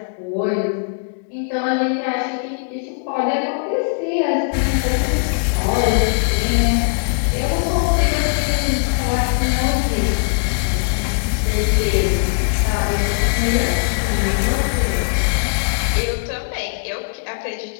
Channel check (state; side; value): silent; right; digital silence